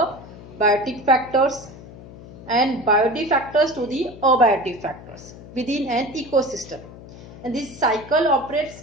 biotic factors and biotic factors to the abiotic factors within an ecosystem, and this cycle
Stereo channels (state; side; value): noise; left; hum, 17 dB below the sound